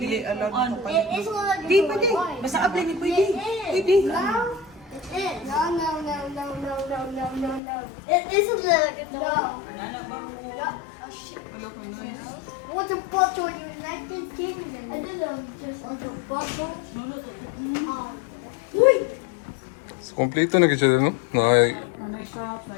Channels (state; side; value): drops out; right; at 7.6 s